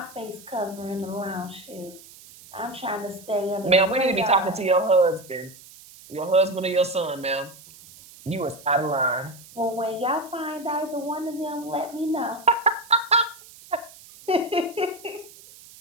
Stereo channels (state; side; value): noise; right; hiss, 20 dB below the sound